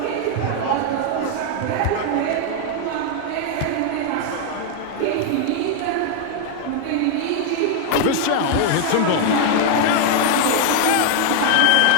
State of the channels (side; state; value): both; different; correlation 0.00